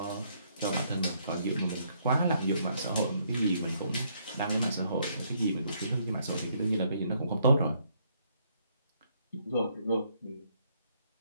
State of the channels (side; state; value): both; inverted; correlation -0.70